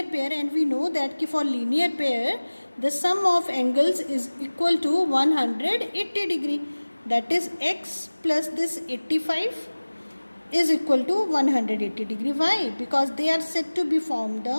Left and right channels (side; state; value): both; inverted; correlation -1.00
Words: pair and we know that कि for linear pair the sum of angles is equal to 180 degree. That is x plus this 85 is equal to 180 degree. Why? Because they are said to be formed